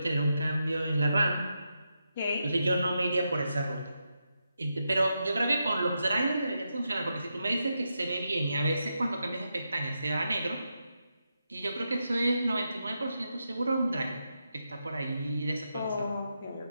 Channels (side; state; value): both; inverted; correlation -0.85